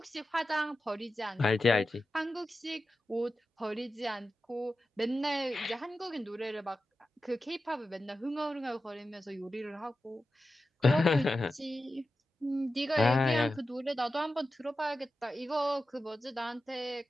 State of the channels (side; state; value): both; normal; correlation 0.92